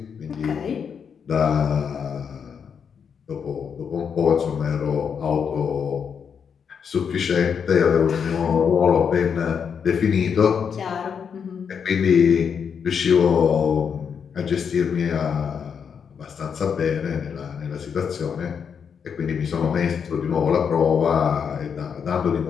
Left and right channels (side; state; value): right; quieter; 6.9 dB